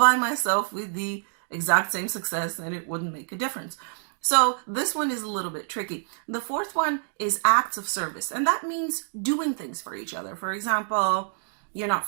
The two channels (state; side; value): silent; left; digital silence